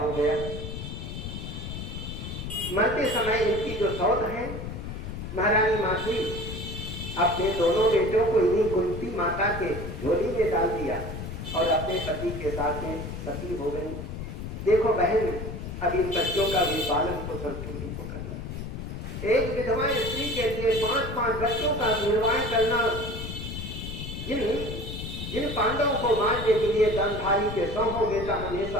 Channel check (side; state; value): left; noise; rumble, 7 dB below the sound